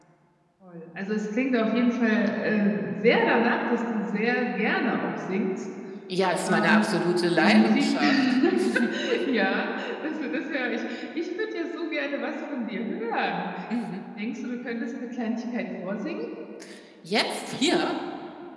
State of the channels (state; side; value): identical; both; correlation 1.00